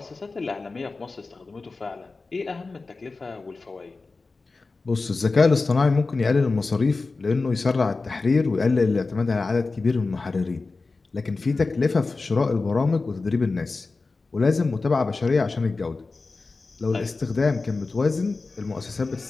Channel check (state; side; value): quieter; right; 3.8 dB